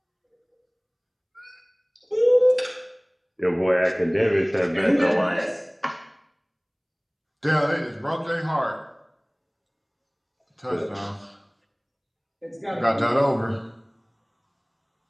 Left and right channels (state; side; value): identical; both; correlation 1.00